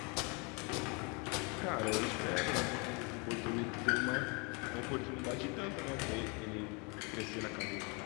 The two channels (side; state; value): right; quieter; 32.0 dB